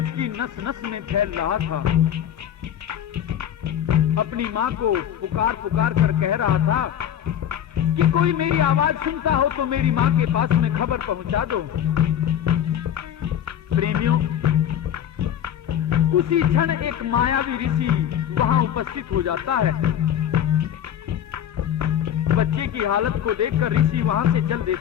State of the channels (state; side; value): quieter; right; 10.1 dB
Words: नस नस में फैल रहा था। अपनी माँ को पुकार पुकार कर कह रहा था कि कोई मेरी आवाज सुनता हो तो मेरी माँ के पास में खबर पहुंचा दो। प्रेमियों, उसी क्षण एक मायावी ऋषि वहां उपस्थित हो जाता है। बच्चे की हालत को देखकर ऋषि वहां से चल